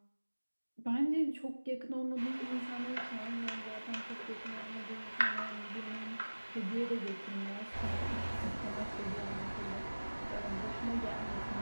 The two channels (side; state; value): both; inverted; correlation -1.00